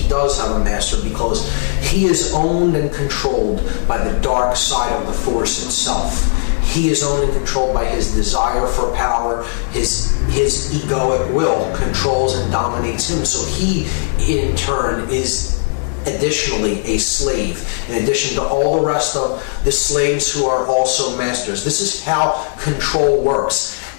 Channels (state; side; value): silent; right; digital silence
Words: does have a master, because he is owned and controlled by the dark side of the Force itself. He is owned and controlled by his desire for power. His egoic will controls and dominates him. So he, in turn, is additionally a slave, in addition to all the rest of the slaves who are also masters. This is how control works.